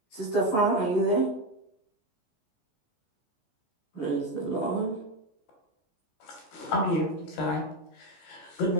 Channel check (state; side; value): late; right; 14 ms